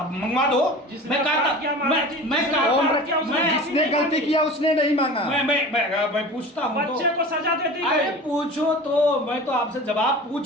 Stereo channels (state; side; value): normal; both; correlation 0.37